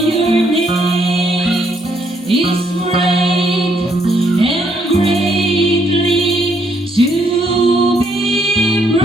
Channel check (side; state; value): both; normal; correlation 0.71